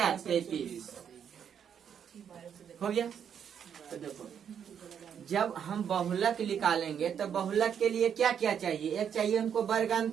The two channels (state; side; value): quieter; left; 8.2 dB